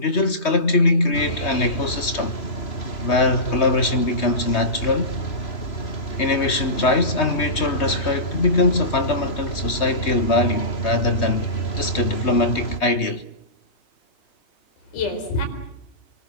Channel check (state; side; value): late; right; 3.2 ms